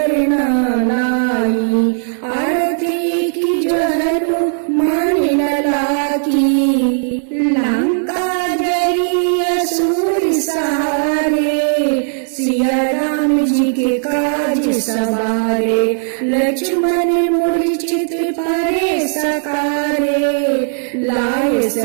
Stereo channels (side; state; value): left; silent; digital silence